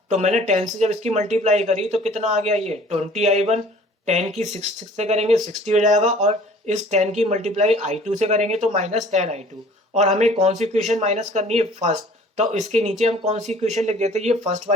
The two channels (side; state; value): both; normal; correlation 0.51